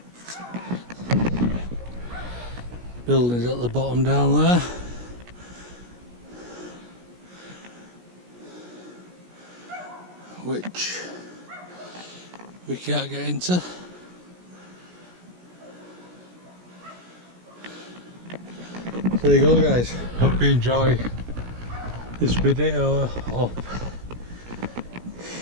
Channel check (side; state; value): left; late; 17 ms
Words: Buildings at the bottom down there. Which we can't get into. There you go guys, hope you enjoy this video of